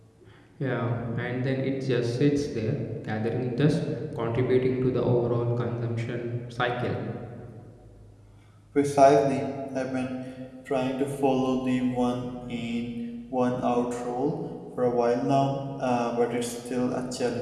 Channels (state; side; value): identical; both; correlation 1.00